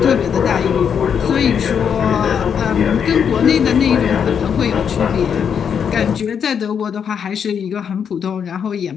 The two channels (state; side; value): quieter; right; 7.5 dB